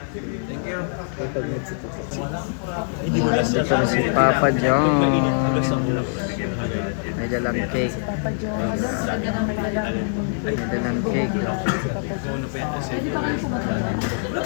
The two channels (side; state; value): right; silent; digital silence